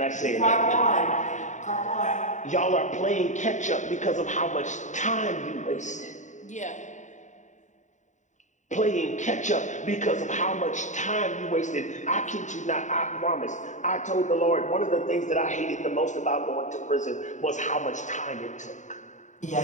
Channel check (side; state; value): right; late; 0.35 ms